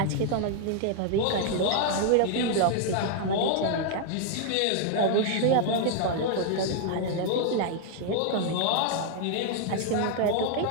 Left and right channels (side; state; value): both; different; correlation 0.00